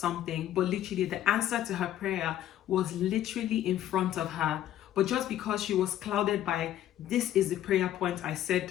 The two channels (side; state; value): right; quieter; 12.2 dB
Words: but literally the answer to her prayer was literally in front of her. But just because she was clouded by, this is the prayer point I